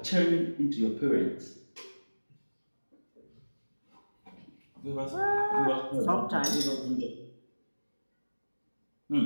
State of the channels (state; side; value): inverted; both; correlation -1.00